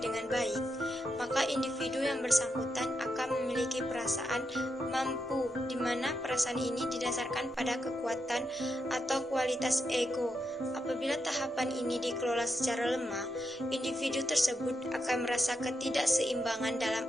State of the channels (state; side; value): normal; both; correlation 0.84